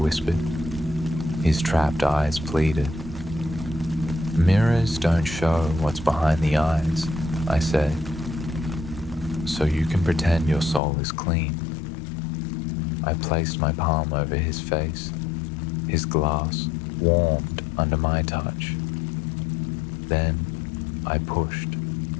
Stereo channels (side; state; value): right; drops out; at 10.8 s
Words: His trapped eyes pleaded. "Mirrors don't show what's behind the eyes," I said. "So you can pretend your soul is clean." I placed my palm over his face. His glass warmed under my touch. Then I pushed.